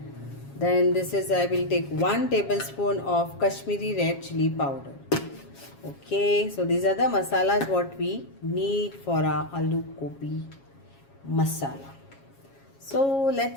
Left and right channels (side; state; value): right; late; 7.3 ms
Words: Then this is, I will take 1 tablespoon of Kashmiri red chili powder. Okay, so these are the masalas what we need for our aloo gobi masala. So